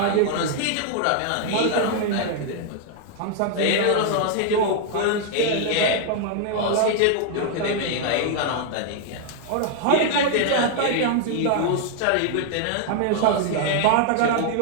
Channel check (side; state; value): both; different; correlation 0.00